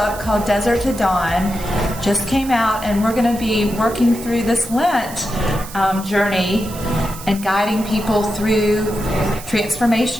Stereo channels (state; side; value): noise; right; hiss, 14 dB below the sound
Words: called Desert to Dawn. Just came out, and we're going to be working through this Lent journey and guiding people through